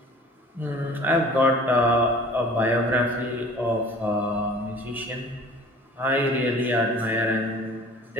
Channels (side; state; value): both; normal; correlation 0.47